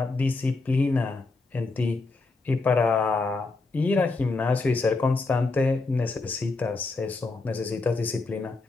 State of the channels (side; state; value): right; quieter; 3.6 dB